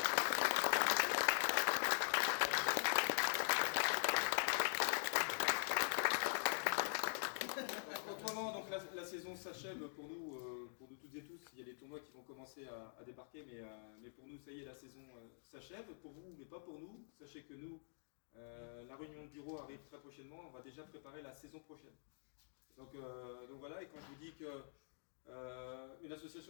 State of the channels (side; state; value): right; silent; digital silence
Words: Autrement, donc la saison s'achève pour nous toutes et tous. Il y a des tournois qui vont commencer à débarquer, mais pour nous, ça y est, la saison s'achève. Pour vous, mais pas pour nous. Sachez que nous, la réunion de bureau arrive très prochainement. On va déjà préparer la saison prochaine. Donc voilà, et quand je vous dis que une